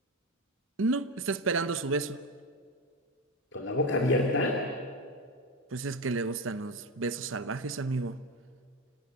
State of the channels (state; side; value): normal; both; correlation 0.16